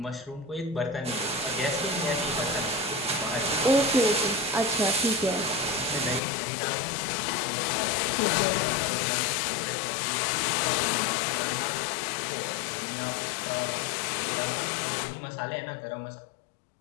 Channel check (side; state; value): right; drops out; at 6.2 s